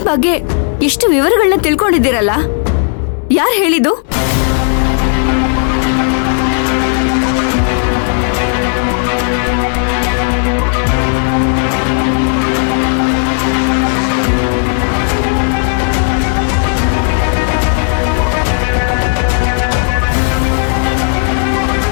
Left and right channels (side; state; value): right; silent; 57 dB below the other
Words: ಬಗ್ಗೆ ಇಷ್ಟು ವಿವರಗಳನ್ನ ತಿಳ್ಕೊಂಡಿದ್ದೀರಲ್ಲ, ಯಾರು ಹೇಳಿದ್ದು?